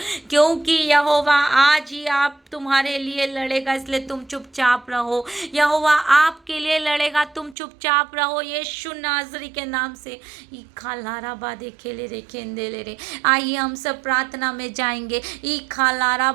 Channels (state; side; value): drops out; left; at 7.6 s